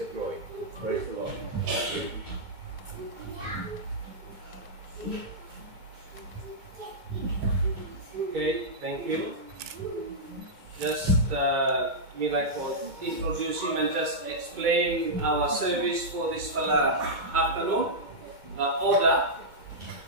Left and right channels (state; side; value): late; left; 2.3 ms